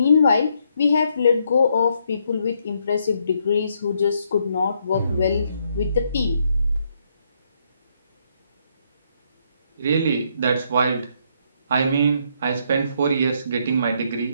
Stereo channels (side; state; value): both; inverted; correlation -0.73